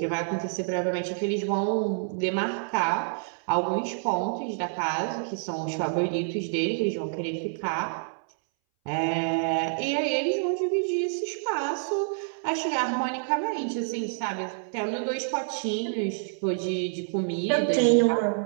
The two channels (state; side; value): silent; left; 60 dB below the other